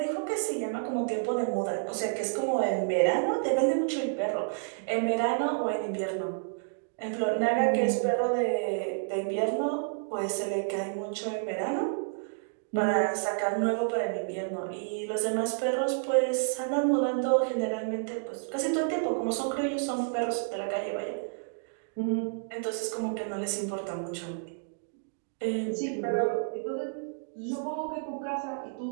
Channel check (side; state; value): left; silent; digital silence